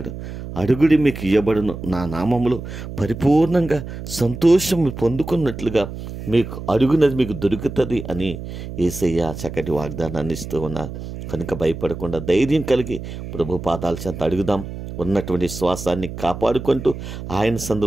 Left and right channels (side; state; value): right; noise; hum, 9 dB below the sound